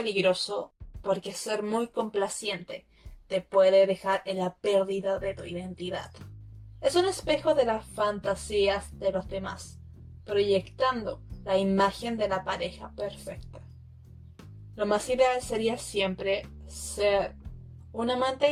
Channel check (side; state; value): both; identical; correlation 1.00